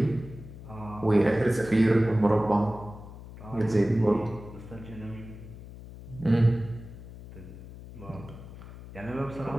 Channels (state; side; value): noise; left; hum, 15 dB below the sound